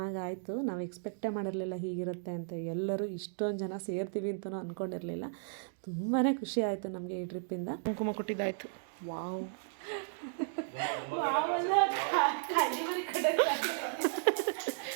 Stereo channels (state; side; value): silent; left; digital silence